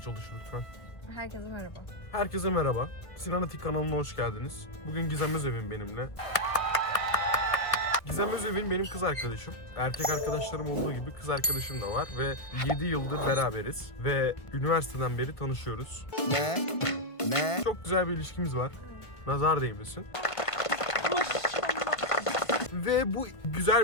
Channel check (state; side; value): late; right; 1.5 ms